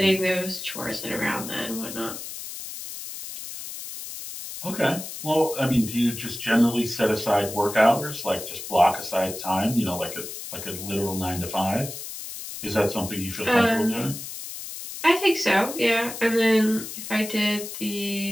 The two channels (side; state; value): left; noise; hiss, 9 dB below the sound